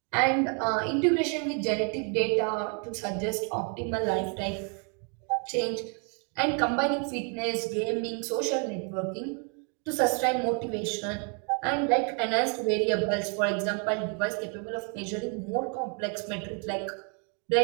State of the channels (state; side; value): quieter; left; 39.1 dB